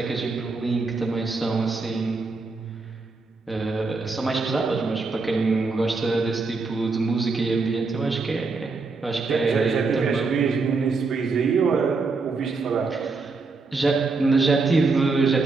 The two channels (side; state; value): left; quieter; 4.1 dB